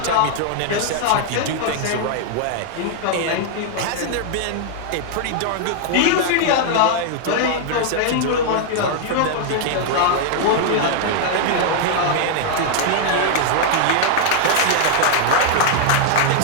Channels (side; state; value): both; different; correlation 0.00